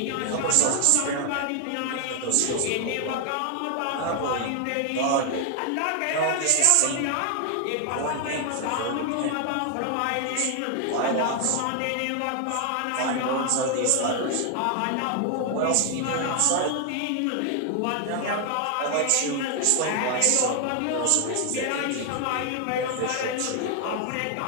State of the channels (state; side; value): different; both; correlation 0.00